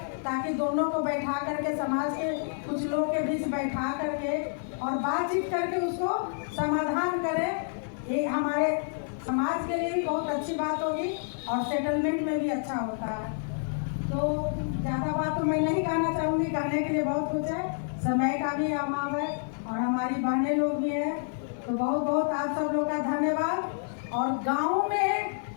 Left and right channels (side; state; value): right; silent; digital silence